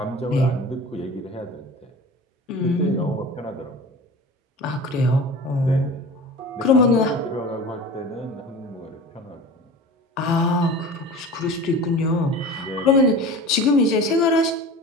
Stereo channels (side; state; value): both; normal; correlation 0.36